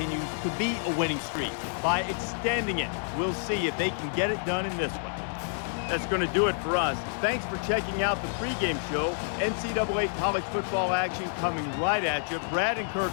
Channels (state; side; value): silent; right; digital silence